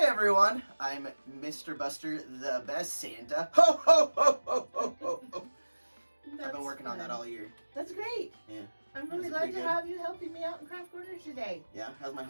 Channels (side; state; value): both; inverted; correlation -1.00